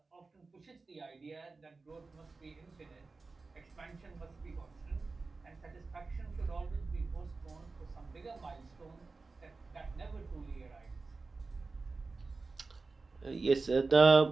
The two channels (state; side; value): quieter; left; 3.9 dB